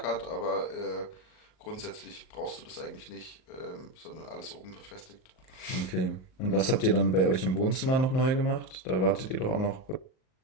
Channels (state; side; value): late; right; 38 ms